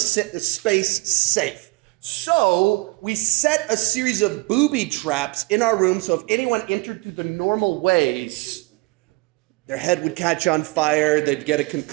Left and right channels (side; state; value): left; quieter; 25.1 dB